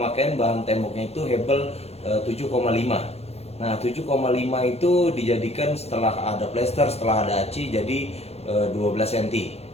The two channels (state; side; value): late; right; 0.30 ms